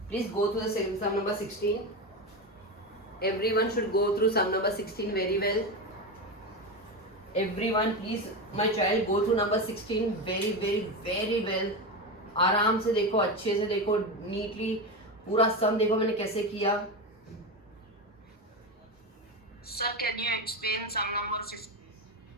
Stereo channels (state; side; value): normal; both; correlation 0.17